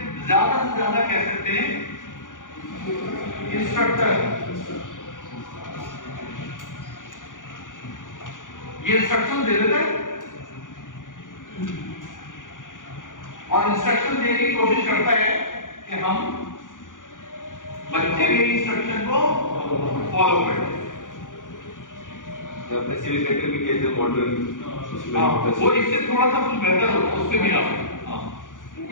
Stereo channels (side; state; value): right; late; 0.88 ms